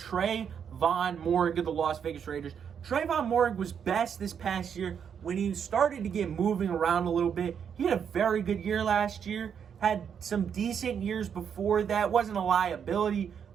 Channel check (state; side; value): quieter; left; 7.6 dB